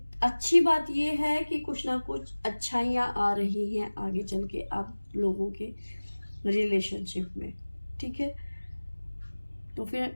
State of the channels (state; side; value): inverted; both; correlation -1.00